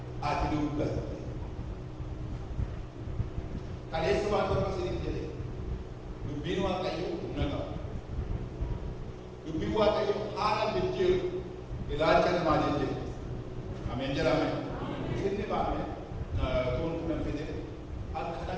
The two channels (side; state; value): both; identical; correlation 1.00